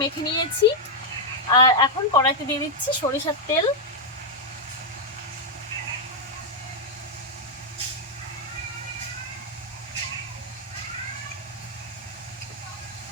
মেখে নিয়েছি। আর এখন কড়াইতে দিয়ে দিচ্ছি সরিষার তেল।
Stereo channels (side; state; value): both; normal; correlation -0.02